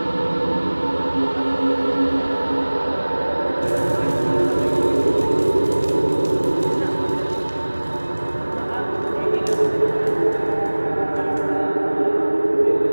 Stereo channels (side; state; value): both; inverted; correlation -1.00